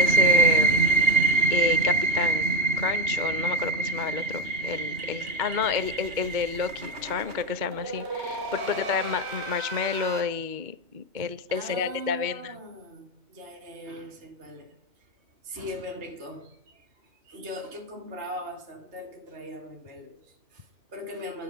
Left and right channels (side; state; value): left; late; 2.2 ms